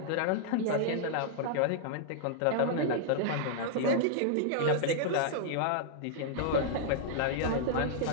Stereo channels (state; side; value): different; both; correlation -0.01